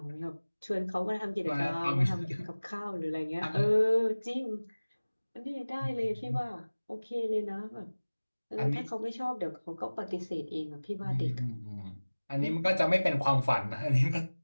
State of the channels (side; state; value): both; inverted; correlation -1.00